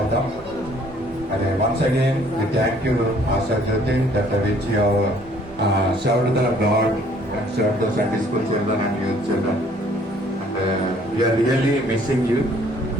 మరి once again we thank you Asha Jyoti that which you served the God and served the Sunday school children and youth children, and we are really missing you.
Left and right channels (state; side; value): normal; both; correlation 0.59